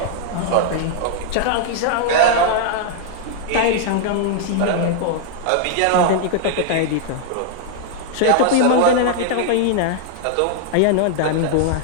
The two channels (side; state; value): both; different; correlation -0.01